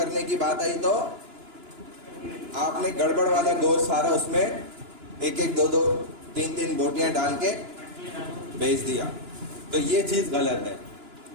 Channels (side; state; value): left; late; 2.9 ms